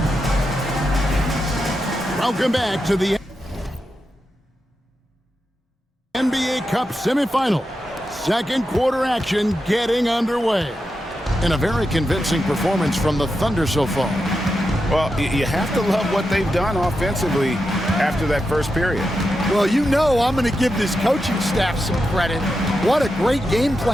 Welcome back to the NBA Cup semifinal. Second quarter action getting underway. And a very convincing performance from the Thunder so far. Well, you have to love what they've done offensively after that first period. Well, you know I'm going to give this coaching staff some credit. What a great game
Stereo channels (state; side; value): normal; both; correlation 0.88